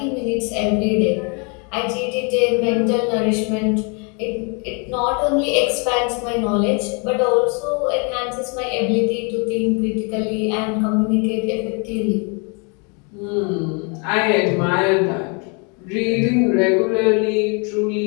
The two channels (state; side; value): quieter; right; 34.6 dB